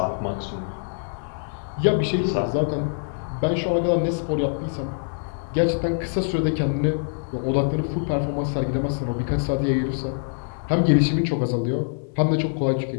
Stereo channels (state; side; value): silent; right; 61 dB below the other